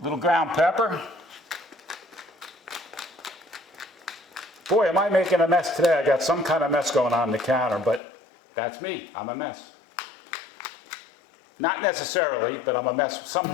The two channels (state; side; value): drops out; right; at 8.0 s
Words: little ground pepper. Boy, am I making a mess today. I got some kind of mess going on the counter, but that's me. I'm a mess. Not necessarily, but I'm a mess